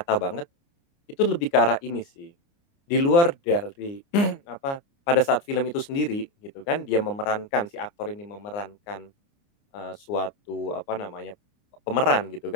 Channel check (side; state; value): right; late; 29 ms